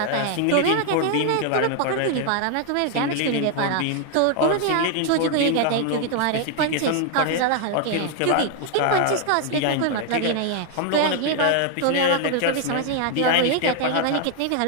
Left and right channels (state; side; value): different; both; correlation 0.00